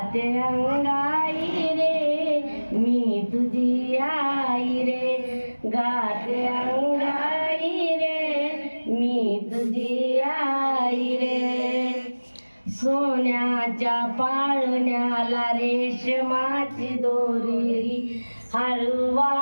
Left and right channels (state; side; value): inverted; both; correlation -1.00